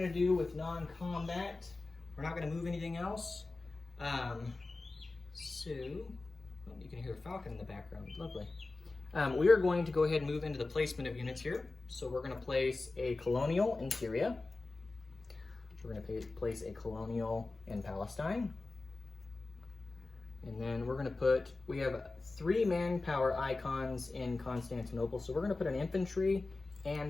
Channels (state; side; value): quieter; right; 3.4 dB